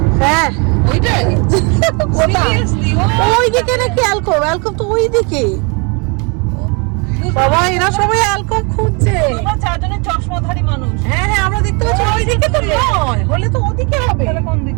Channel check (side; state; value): left; quieter; 32.1 dB